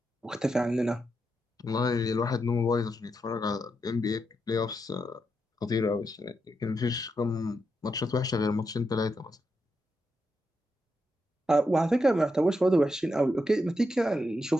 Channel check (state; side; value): normal; both; correlation 0.84